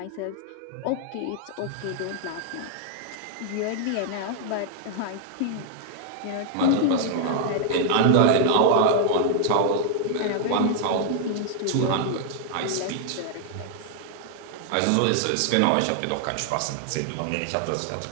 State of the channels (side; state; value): both; different; correlation 0.00